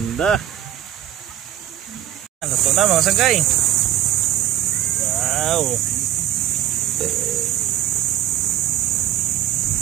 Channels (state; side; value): quieter; left; 12.0 dB